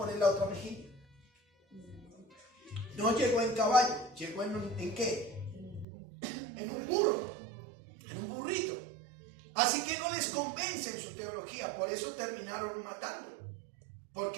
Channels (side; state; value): left; drops out; at 5.9 s